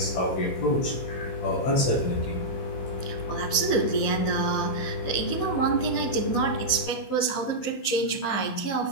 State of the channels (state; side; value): late; right; 16 ms